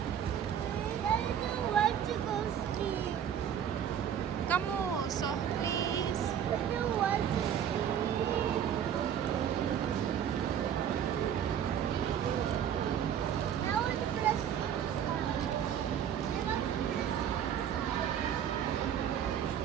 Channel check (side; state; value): left; quieter; 9.1 dB